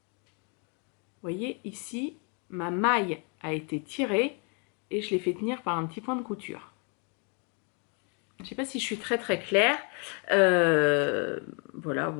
Vous voyez, ici, ma maille a été tirée et je l'ai fait tenir par un petit point de couture. Je ne sais pas si je suis très très claire. Voilà,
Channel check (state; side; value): quieter; right; 36.6 dB